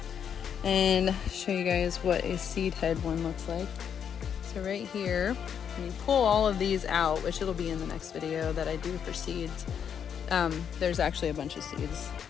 and show you guys what a seed head one looks like. So right here, when you pull all of these out, which it'll be in the next video that I do for seeds, there's actually a bunch of seeds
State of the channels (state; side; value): quieter; right; 8.0 dB